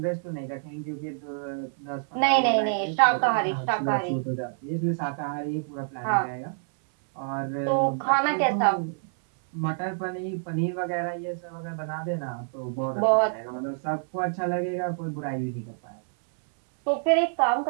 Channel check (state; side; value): silent; left; 60 dB below the other